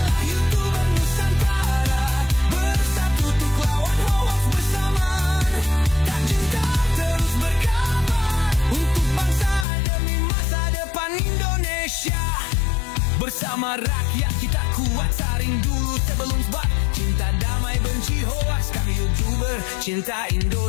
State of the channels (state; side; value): drops out; right; at 9.7 s